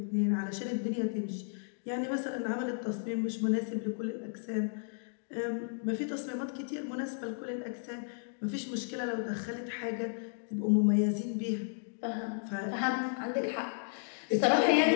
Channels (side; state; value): right; silent; digital silence